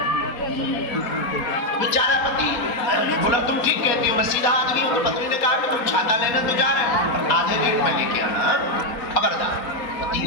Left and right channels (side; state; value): right; late; 4.2 ms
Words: बेचारा पति बोला तुम ठीक कहती हो, मैं सीधा आदमी हूँ। तो पत्नी ने कहा कि तुम छाता लेने तो जा रहे हो, पर आधे रेट में लेके आना, खबरदार। पति